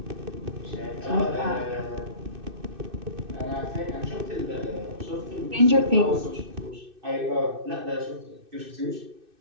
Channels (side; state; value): left; late; 2.6 ms